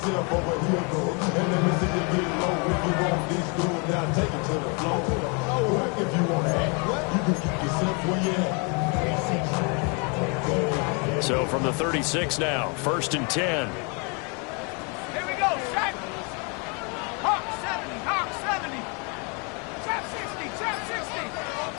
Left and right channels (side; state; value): right; quieter; 34.0 dB